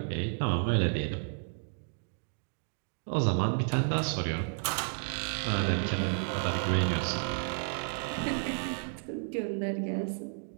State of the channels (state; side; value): silent; left; 56 dB below the other